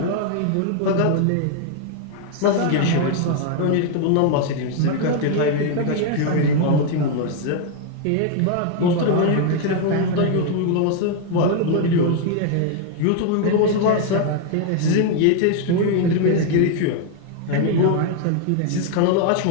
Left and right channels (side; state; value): both; different; correlation 0.00